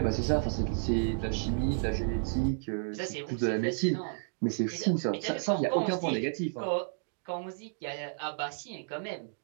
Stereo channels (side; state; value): left; silent; digital silence